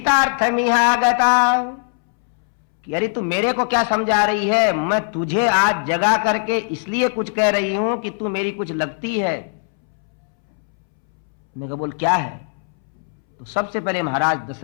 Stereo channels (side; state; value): right; silent; 66 dB below the other